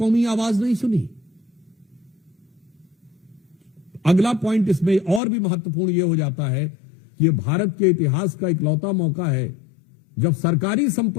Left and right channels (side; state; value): right; drops out; at 5.2 s